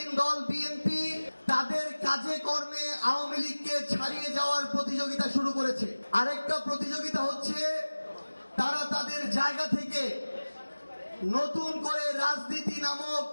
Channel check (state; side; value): inverted; both; correlation -1.00